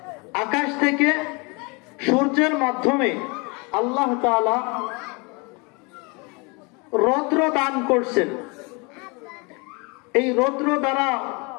আকাশ থেকে সূর্যের মাধ্যমে আল্লাহ তাআলা রৌদ্র দান করছেন। এই রৌদ্র দ্বারা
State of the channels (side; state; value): right; quieter; 29.6 dB